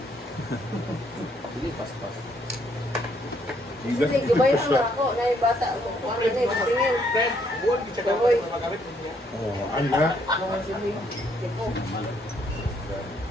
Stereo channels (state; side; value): normal; both; correlation 0.69